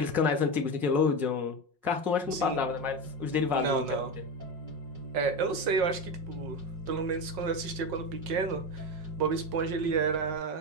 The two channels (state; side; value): late; left; 5.5 ms